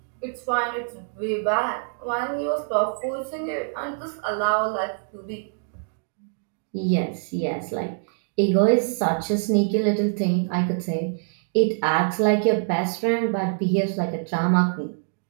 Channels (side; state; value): left; silent; digital silence